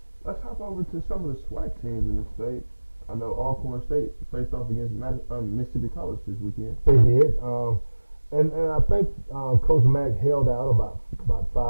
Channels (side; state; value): both; inverted; correlation -1.00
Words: Let's hop over to some of the SWAC teams in the state. I know Alcorn State faced off against Mississippi College this weekend. They did, and I think Coach Mack held out about 5